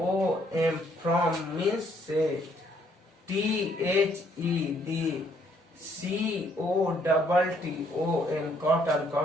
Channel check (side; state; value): both; normal; correlation 0.67